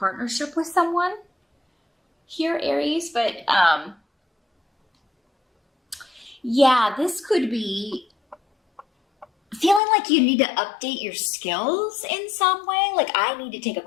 with someone here, Aries. But yeah, this could be feeling like you need to update your skills in some way. Like, I need to take a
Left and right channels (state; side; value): drops out; right; at 9.8 s